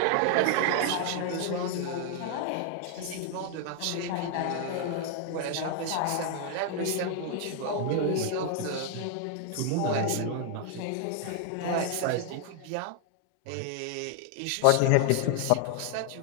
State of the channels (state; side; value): different; both; correlation 0.00